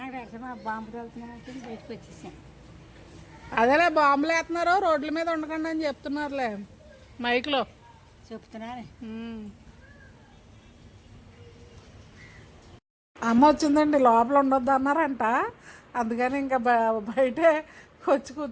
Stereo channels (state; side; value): identical; both; correlation 1.00